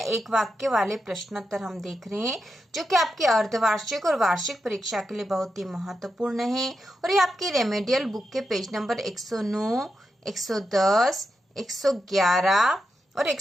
वाक्य वाले प्रश्नोत्तर हम देख रहे हैं जो कि आपकी अर्धवार्षिक और वार्षिक परीक्षा के लिए बहुत ही महत्वपूर्ण है। और ये आपकी रेमेडियल बुक के पेज नंबर 109, 110, 111 और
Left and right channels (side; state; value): both; normal; correlation 0.86